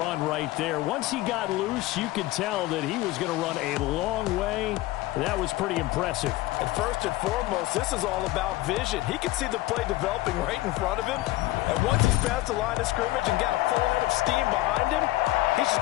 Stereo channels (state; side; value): quieter; right; 17.6 dB